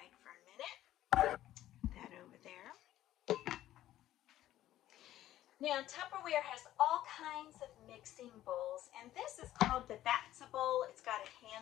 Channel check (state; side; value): quieter; right; 13.5 dB